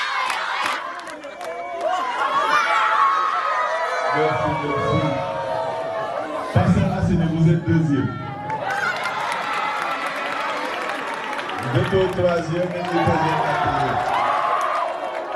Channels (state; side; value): identical; both; correlation 1.00